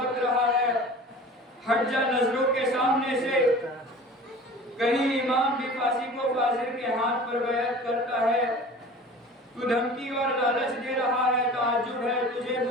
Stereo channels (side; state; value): both; normal; correlation 0.41